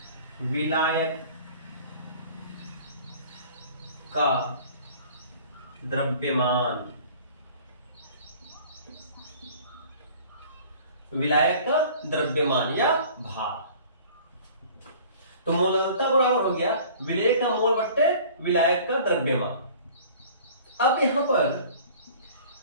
विलायक का द्रव्यमान, विलायक का द्रव्यमान या भार। तो मोललता बराबर हो गया विलेय का मोल बट्टे विलायक का द्रव्यमान। अब यहां पर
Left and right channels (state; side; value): inverted; both; correlation -0.47